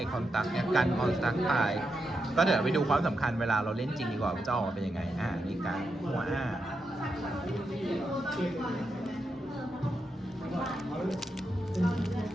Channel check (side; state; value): both; normal; correlation 0.85